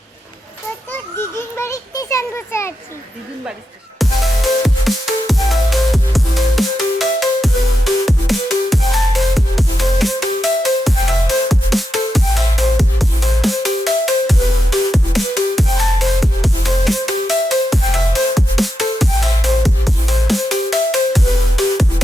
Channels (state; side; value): normal; both; correlation 0.87